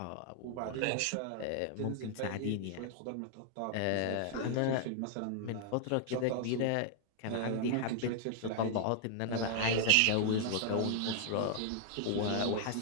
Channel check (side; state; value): both; different; correlation 0.00